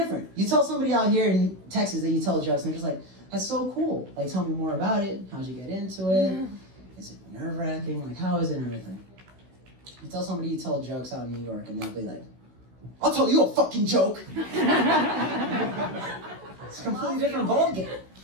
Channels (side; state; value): left; late; 16 ms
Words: You tell somebody out here in Texas that you tell jokes, and they're just like, that's so cool. Like, tell me more about it. How'd you get into it? It's like nerve-wracking. Like, how is it and everything? You tell somebody you tell jokes out in New York, and they'll be like, I'll tell you a fucking joke. It's a completely different ballgame.